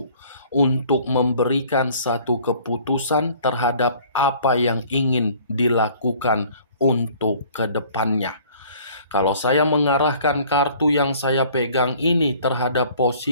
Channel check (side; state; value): both; inverted; correlation -0.53